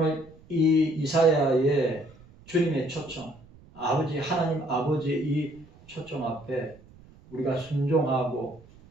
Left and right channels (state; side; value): noise; right; rumble, 24 dB below the sound